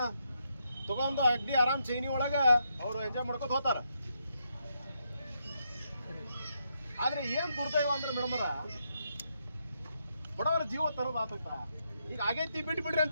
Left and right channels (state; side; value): inverted; both; correlation -0.80